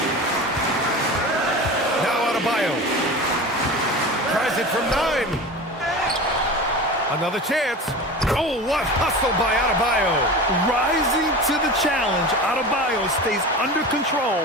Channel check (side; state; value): both; normal; correlation 0.31